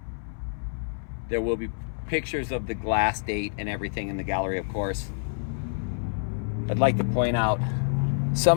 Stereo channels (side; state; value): right; silent; 60 dB below the other